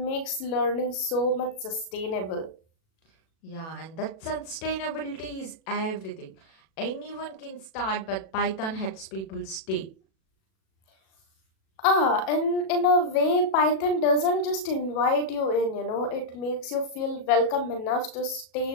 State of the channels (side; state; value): right; late; 37 ms